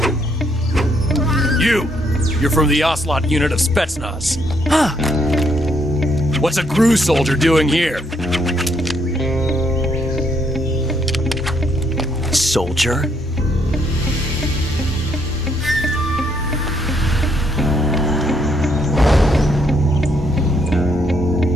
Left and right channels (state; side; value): normal; both; correlation 0.72